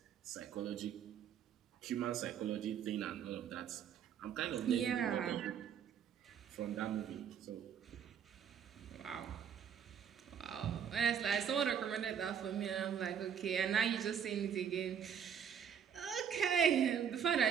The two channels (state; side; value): quieter; left; 8.1 dB